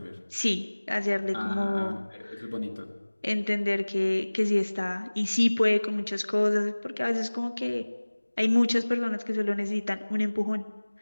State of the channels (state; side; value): inverted; both; correlation -1.00